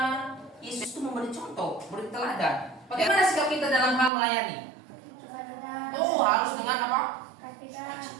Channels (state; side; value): drops out; left; at 4.1 s